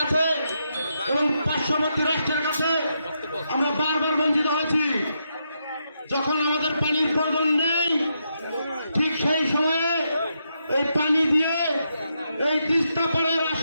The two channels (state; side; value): inverted; both; correlation -0.82